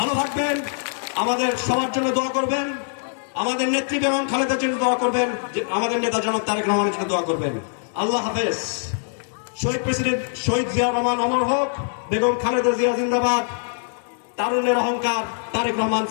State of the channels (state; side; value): silent; right; digital silence